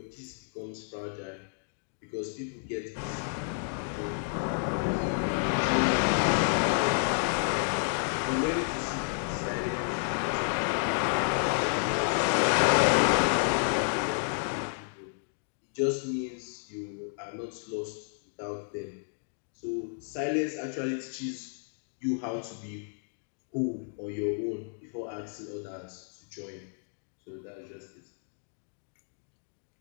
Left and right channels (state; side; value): silent; right; digital silence